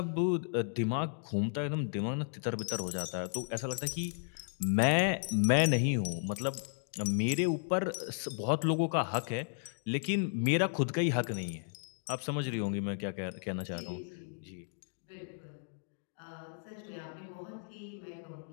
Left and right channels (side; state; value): right; silent; digital silence